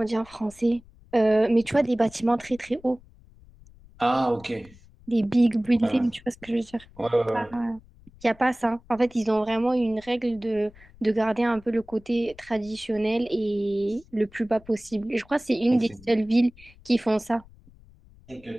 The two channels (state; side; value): noise; left; rumble, 24 dB below the sound